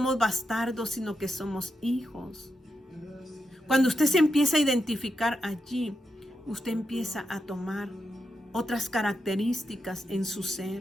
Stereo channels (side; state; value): both; normal; correlation 0.86